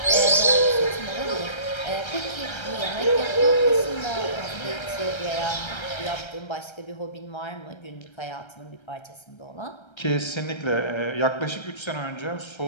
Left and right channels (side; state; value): right; late; 1.3 ms